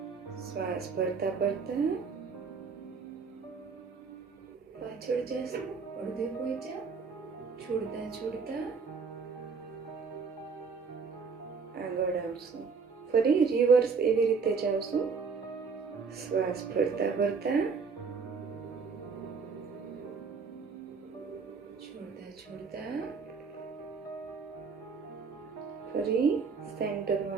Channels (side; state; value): left; quieter; 5.2 dB